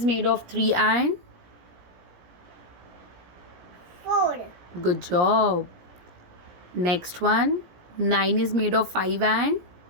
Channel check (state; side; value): late; left; 17 ms